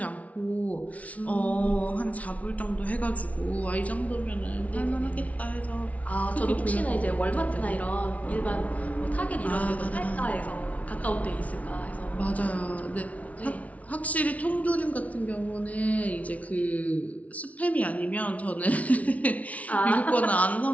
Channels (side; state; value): right; late; 0.068 ms